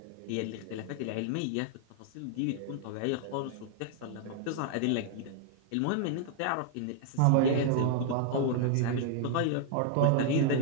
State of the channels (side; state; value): both; different; correlation 0.00